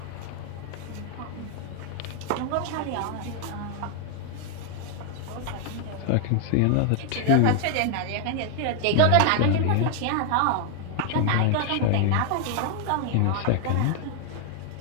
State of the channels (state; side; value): different; both; correlation 0.00